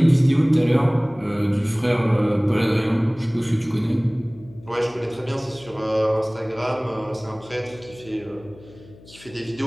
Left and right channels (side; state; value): left; noise; hum, 22 dB below the sound